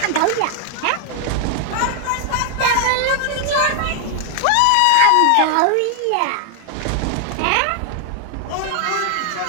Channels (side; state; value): both; different; correlation 0.00